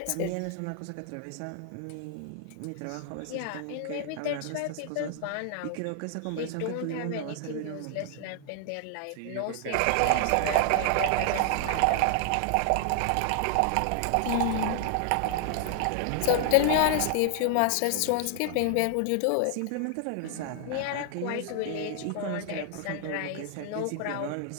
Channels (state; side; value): different; both; correlation 0.00